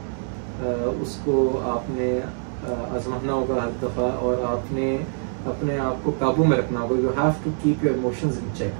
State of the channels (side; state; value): left; silent; 62 dB below the other